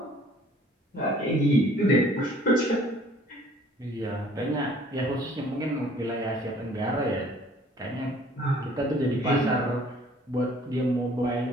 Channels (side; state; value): both; normal; correlation 0.55